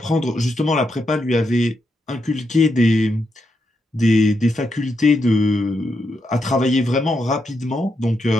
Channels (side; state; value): both; normal; correlation 0.83